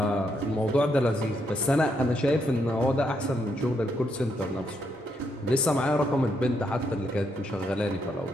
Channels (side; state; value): both; normal; correlation 0.77